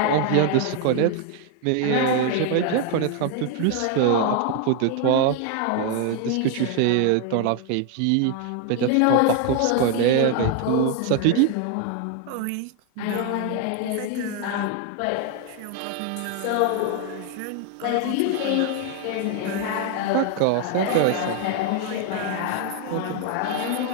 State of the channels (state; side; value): different; both; correlation 0.01